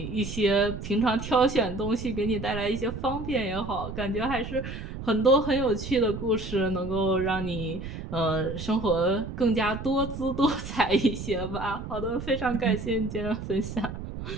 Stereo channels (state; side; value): noise; right; rumble, 8 dB below the sound